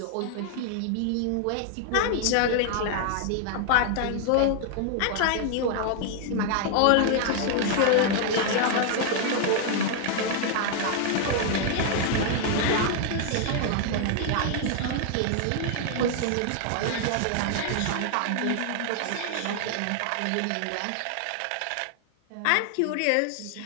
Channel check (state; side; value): different; both; correlation 0.00